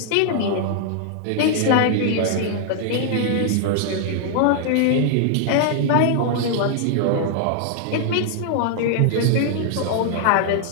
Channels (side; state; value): both; different; correlation -0.01